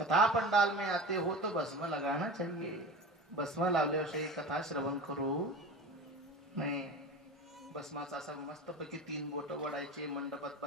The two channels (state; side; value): normal; both; correlation 0.32